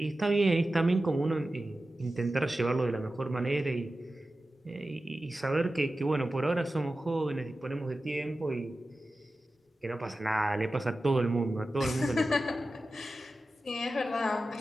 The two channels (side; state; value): both; normal; correlation 0.94